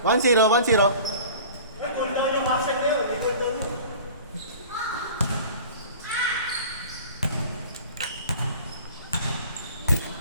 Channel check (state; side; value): inverted; both; correlation -0.43